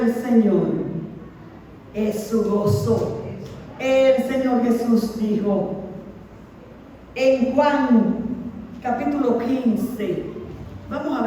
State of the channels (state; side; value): identical; both; correlation 1.00